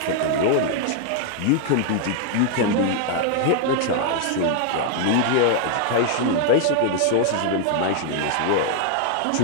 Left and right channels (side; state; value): both; different; correlation 0.00